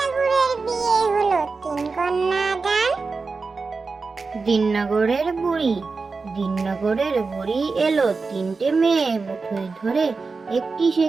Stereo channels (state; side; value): quieter; left; 4.3 dB